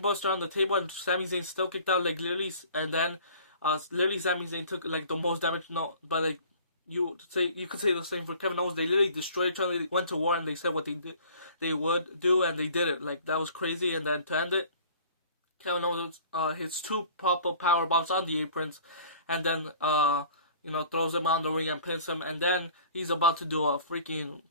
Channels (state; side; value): inverted; both; correlation -0.48